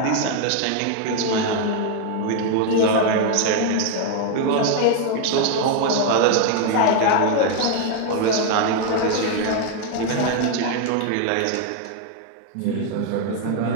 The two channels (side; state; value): both; different; correlation 0.01